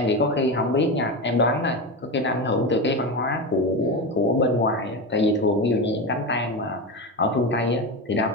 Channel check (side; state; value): both; normal; correlation 0.20